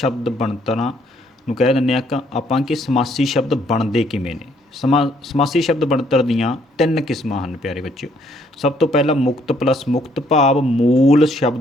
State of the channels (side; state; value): both; normal; correlation 0.67